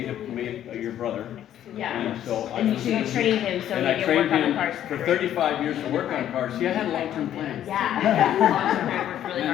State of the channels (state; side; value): quieter; right; 11.2 dB